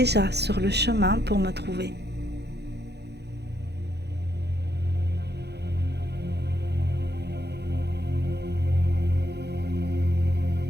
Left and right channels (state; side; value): late; left; 0.48 ms